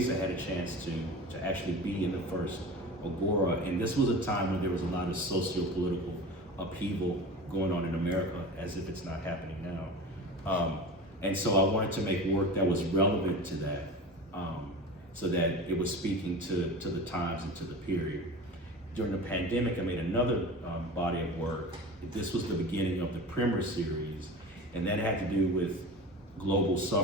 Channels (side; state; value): both; normal; correlation 0.33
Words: I had a chance to actually be in the first Agora, and this was a time when there was a lot of socio-political upheaval going on in America, as if it's not happening now. And so I wanted to make work that was relevant to that, so that it was speaking to the times and to the period. during the pandemic, I made another body of work. This was the beginning of the Primer series, and that had to do with global